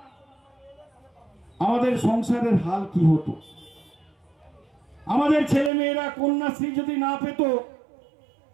আমাদের সংসারের হাল কি হতো? আমাদের ছেলে মেয়েরা কন্যাশ্রী যদি না পেত,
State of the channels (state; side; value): drops out; left; at 5.7 s